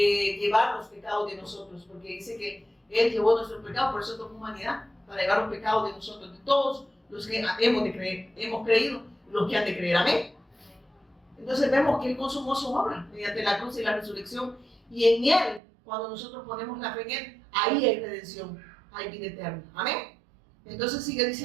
los pecados de nosotros, porque dice que Él llevó nuestros pecados, por eso tomó humanidad, para llevar los pecados de nosotros, de todos los que hemos creído, los que han de creer. Amén. Entonces vemos que Él consumó su obra mediante la cruz y la resurrección, y en Él, cuando nosotros ponemos la fe en Él, ahí hay redención, hay vida eterna. Amén. Entonces sigue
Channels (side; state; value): left; drops out; at 15.6 s